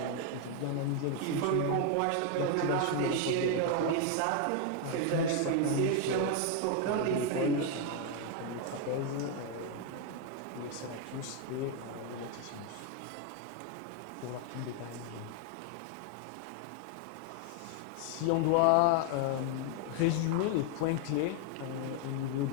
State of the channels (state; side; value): different; both; correlation 0.01